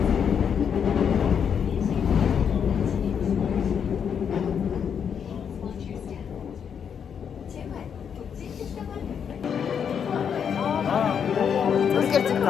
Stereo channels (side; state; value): right; quieter; 7.5 dB